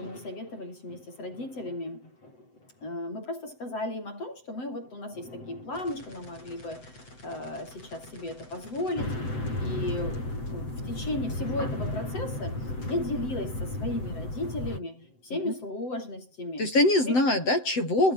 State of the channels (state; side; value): late; right; 7.8 ms